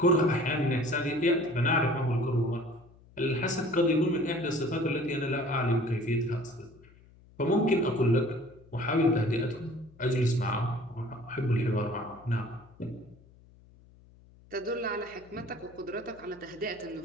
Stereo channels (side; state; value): left; noise; hum, 26 dB below the sound